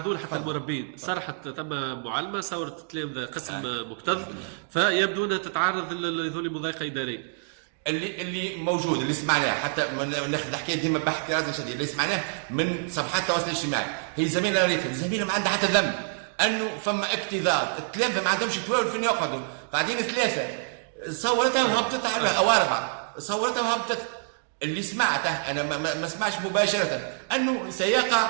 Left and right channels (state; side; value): silent; left; digital silence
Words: لها حتى المربين. صرحت ثم معلمه صورت تلامذه قسم مكتظ، فيبدو انها تتعرض لذول مضايقه اداريه. اللي موجود اللي سمعناه حتى ناخذ الحكايه ديما باحتراز شديد، اللي سمعناه من صفحات التواصل الاجتماعي، هي زميله ريتا الزميله ما عندها حتى ذنب انه فما اكتظاظ، التلامذه ما عندهمش توال فين يقعدوا، قاعدين ثلاثه، صورتها وهبطت على او اربعه، صورتها وهبطت. اللي سمعته انا ما سمعش مباشره انه سيقع